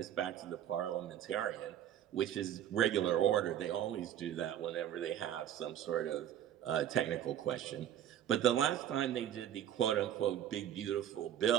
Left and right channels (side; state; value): left; quieter; 10.6 dB